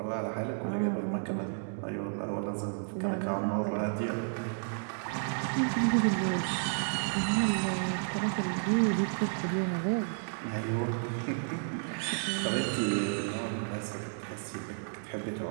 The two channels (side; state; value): left; silent; digital silence